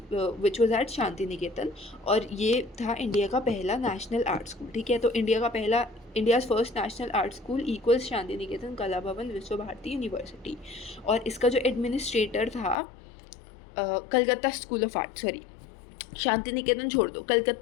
which was at Shanti Niketan. और ये था इंडिया का पहला नेशनल आर्ट स्कूल, ठीक है। तो India's first national art school equals Shanti Niketan, Kala Bhavan, विश्व भारती यूनिवर्सिटी। और इसका जो एडमिनिस्ट्रेटर था Calcutta school of art, sorry Shanti Niketan छोड़ दो,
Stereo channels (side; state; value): right; drops out; at 12.8 s